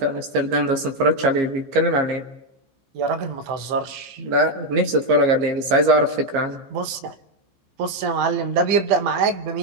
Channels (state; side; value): late; left; 15 ms